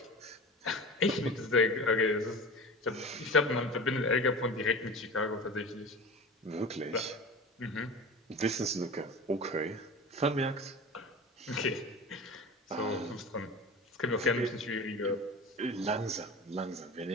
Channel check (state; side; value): normal; both; correlation 0.32